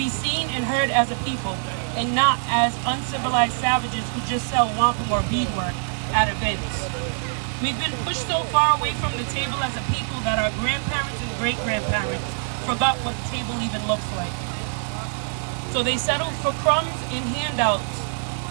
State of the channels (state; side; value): silent; left; 62 dB below the other